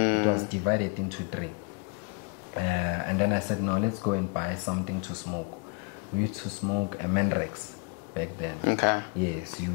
was divided into 3. And then I said, no, let's go and buy something to smoke. We used to smoke a Mandrax back then. Okay. Yes,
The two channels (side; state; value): right; quieter; 32.1 dB